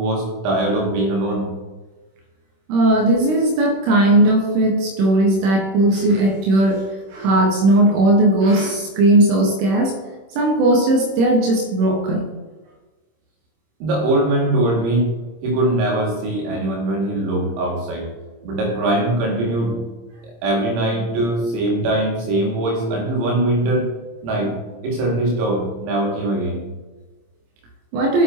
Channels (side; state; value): left; late; 26 ms